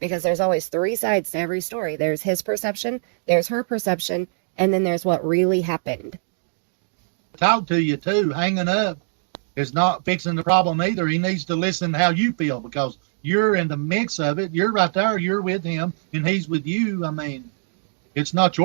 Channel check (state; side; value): silent; left; digital silence